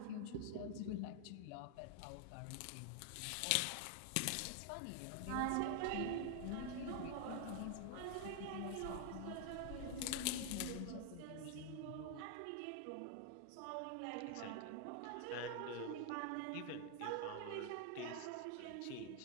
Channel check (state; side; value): different; both; correlation 0.00